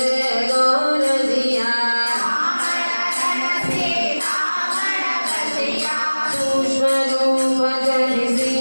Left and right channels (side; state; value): both; inverted; correlation -1.00